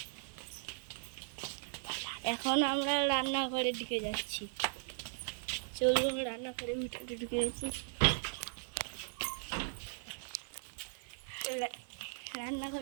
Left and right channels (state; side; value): silent; left; digital silence